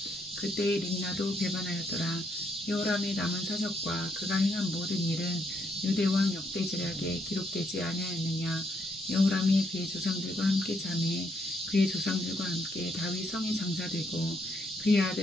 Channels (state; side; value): normal; both; correlation 0.75